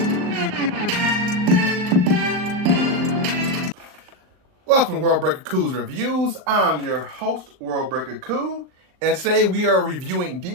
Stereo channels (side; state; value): left; late; 38 ms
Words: Welcome to World Breaker Cool's Reviews. I'm your host, World Breaker Cool, and today we are reviewing